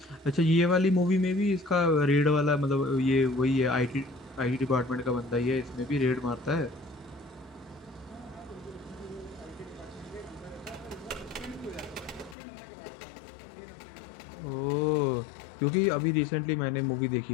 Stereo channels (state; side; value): drops out; right; at 12.4 s